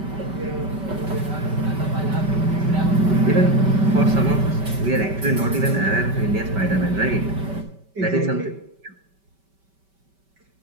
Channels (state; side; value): late; left; 5.2 ms